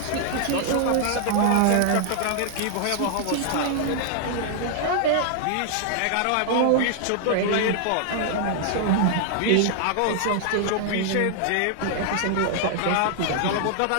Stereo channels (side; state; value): both; different; correlation 0.00